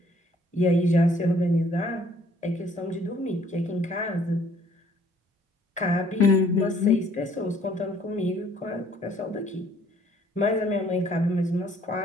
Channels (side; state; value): both; normal; correlation 0.61